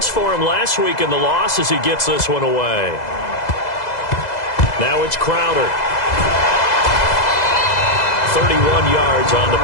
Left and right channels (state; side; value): late; right; 2.0 ms